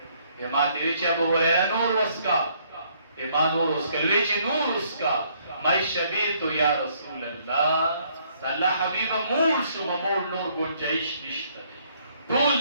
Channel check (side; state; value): both; inverted; correlation -0.66